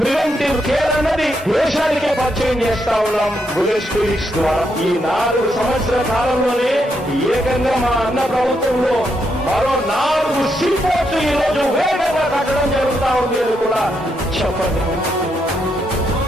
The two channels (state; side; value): normal; both; correlation 0.79